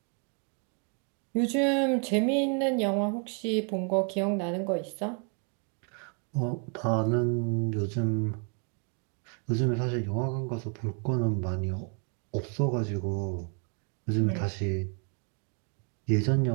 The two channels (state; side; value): quieter; left; 39.9 dB